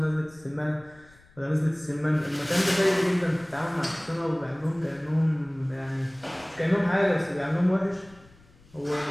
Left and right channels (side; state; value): left; noise; rumble, 27 dB below the sound